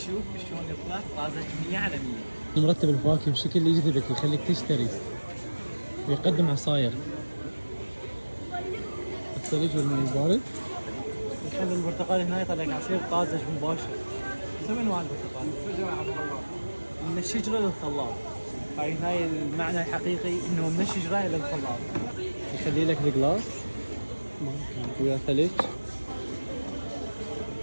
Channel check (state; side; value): inverted; both; correlation -1.00